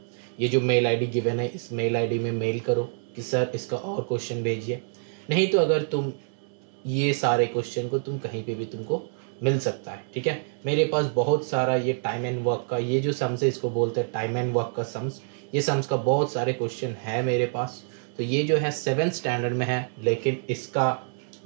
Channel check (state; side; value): silent; left; 60 dB below the other